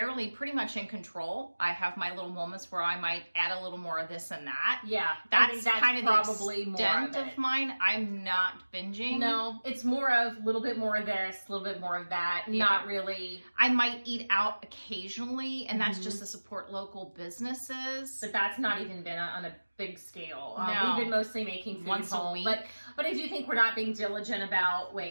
pretty much in control. I have my little moments where I might add a little more of this and that. Yeah, that's kind of probably the extent of mine. I'm not binging. No, it's more of a little bit more of this, a little bit more of that. Yeah. Not really. I might eat out occasionally, and that's just to support local businesses. But that's not even been on a big scale. No. We've been mostly making food once home, a week. But I do think we're not being diligent about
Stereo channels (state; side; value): inverted; both; correlation -1.00